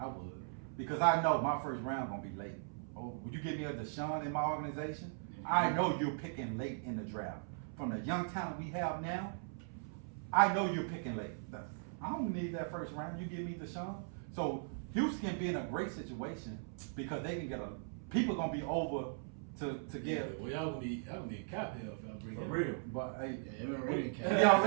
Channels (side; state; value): left; silent; 52 dB below the other